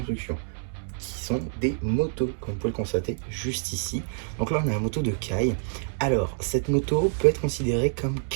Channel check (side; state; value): left; silent; digital silence